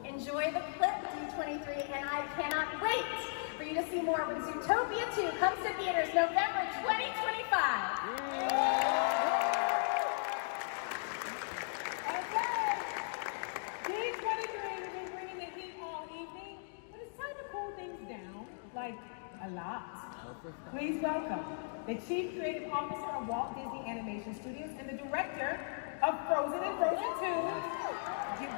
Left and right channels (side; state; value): right; silent; digital silence